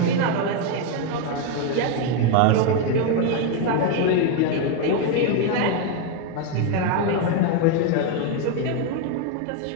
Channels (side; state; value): both; different; correlation 0.01